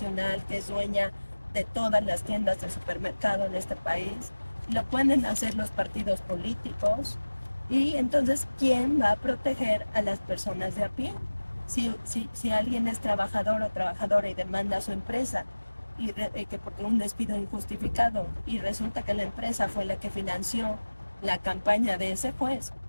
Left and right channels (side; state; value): both; inverted; correlation -1.00